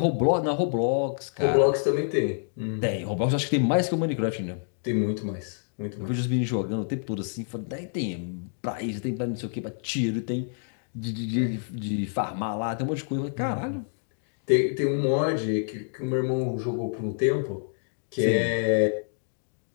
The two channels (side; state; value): right; silent; digital silence